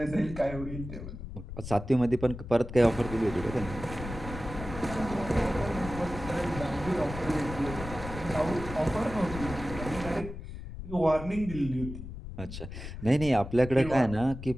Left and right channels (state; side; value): noise; left; rumble, 10 dB below the sound